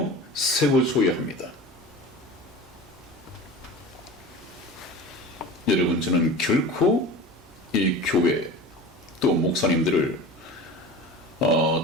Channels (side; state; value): both; normal; correlation 0.34